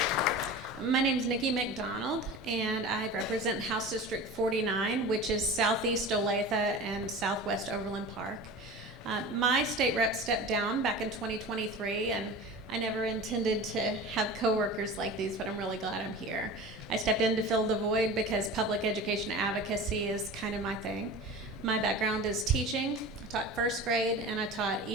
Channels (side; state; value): both; normal; correlation 0.34